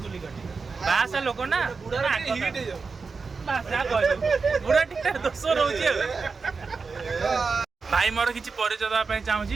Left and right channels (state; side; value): quieter; left; 4.7 dB